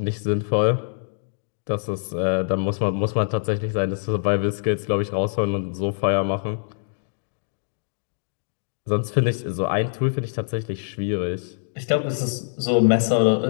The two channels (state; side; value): silent; right; digital silence